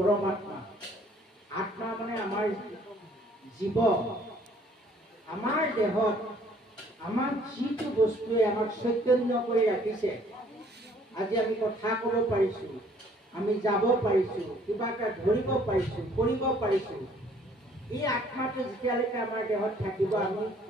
আত্মা মানে আমাৰ জীৱ, আমাৰ দেহত আমাক যিটো বস্তুৱে আমাক চৈতন্য কৰি ৰাখিছে, আজি আমি কথা ক'ব পাৰিছোঁ, আমি যাব পাৰিছোঁ, কিবা এটা ধৰিব পাৰিছোঁ, কৰিব পাৰিছোঁ, এই আত্মাটো যেতিয়ালৈকে আমাৰ দেহত থাকিব আমি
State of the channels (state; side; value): normal; both; correlation 0.60